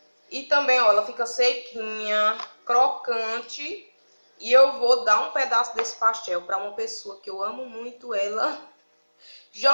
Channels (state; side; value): inverted; both; correlation -1.00